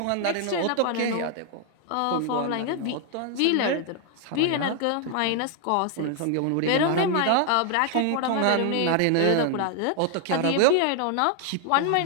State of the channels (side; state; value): both; different; correlation 0.00